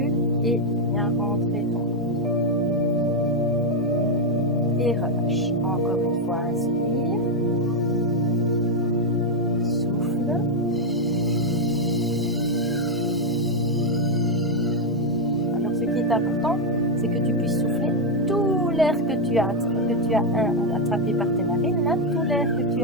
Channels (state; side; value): normal; both; correlation 0.03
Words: et viens rentrer ton ventre. Et relâche. Encore une fois, inspire. Souffle. Alors, ce qui est important, c'est que tu puisses souffler tout l'air que tu as attrapé par tes narines, là, tout l'air que tu